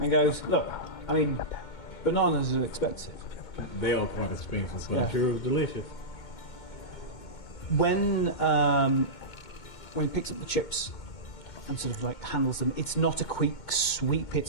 goes, "Look, I mean, bananas are expensive." They are quite expensive, but Yeah. I'm sure it was delicious. When he picks up the chips and sort of like handles them, it's not a quick sweep.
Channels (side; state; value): right; late; 2.2 ms